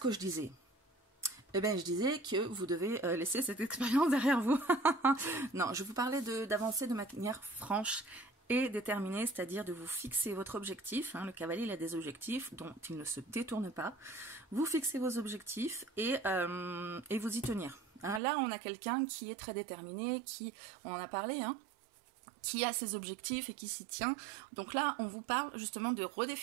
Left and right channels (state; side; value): drops out; left; at 18.2 s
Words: je disais? Eh bien, je disais que vous devez laisser cette expérience derrière vous. Non, je vous parlais d'avancer de manière franche et déterminée, c'est-à-dire de vous fixer votre objectif. Hein, le cavalier, il a des objectifs dont il ne se détourne pas. Vous fixez vos objectifs et vous y tenir. Hein, là, on a quelqu'un qui est très déterminé, on en a parlé, hein, qui a ses objectifs et qui s'y tient. Donc là, on vous parle justement de